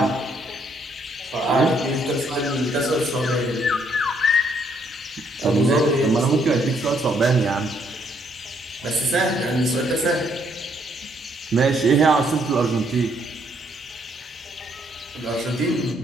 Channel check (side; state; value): both; normal; correlation 0.70